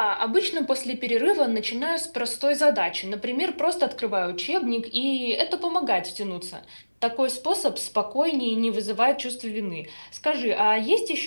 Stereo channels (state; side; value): inverted; both; correlation -1.00